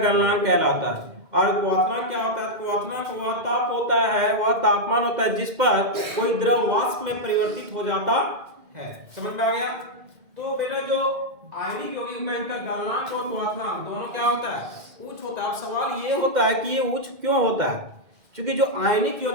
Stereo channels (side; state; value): left; late; 2.1 ms